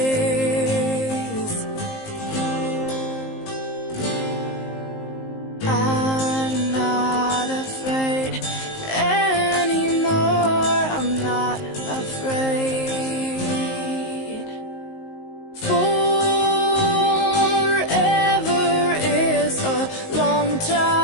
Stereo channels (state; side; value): late; right; 19 ms